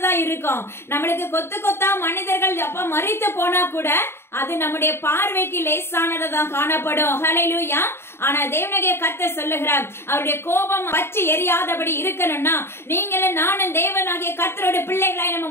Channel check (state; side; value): late; right; 0.12 ms